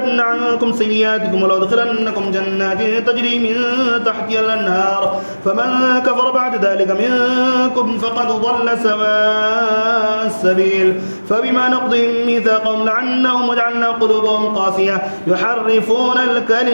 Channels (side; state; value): both; inverted; correlation -1.00